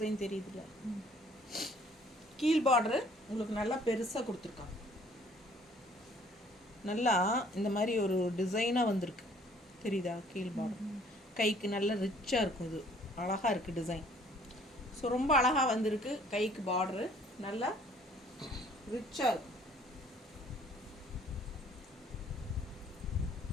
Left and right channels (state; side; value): normal; both; correlation 0.58